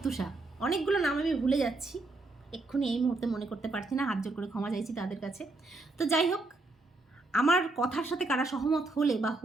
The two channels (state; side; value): quieter; left; 3.1 dB